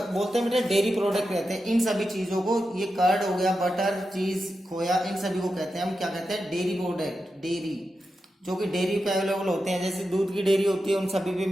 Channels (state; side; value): normal; both; correlation 0.89